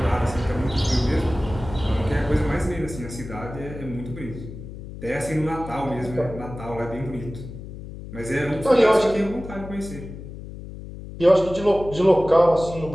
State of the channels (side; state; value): left; noise; hum, 12 dB below the sound